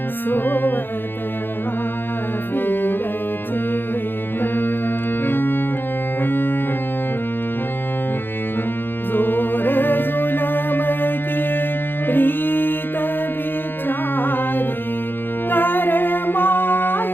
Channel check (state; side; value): late; right; 0.10 ms